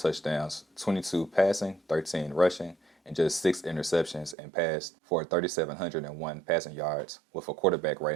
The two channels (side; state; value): left; drops out; at 4.4 s